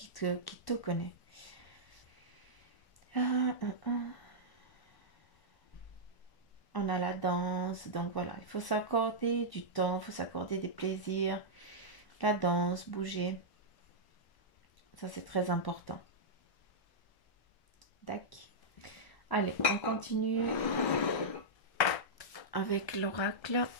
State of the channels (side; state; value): right; late; 1.0 ms